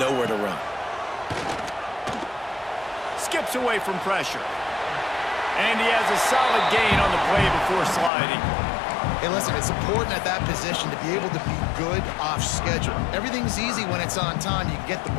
nowhere to run. skips away from pressure. And he has a solid gain on the play before sliding. Hey, listen, it's important at that position to be able to be good off schedule. Everything's easy when it's on time. You can get the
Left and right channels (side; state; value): right; drops out; at 8.1 s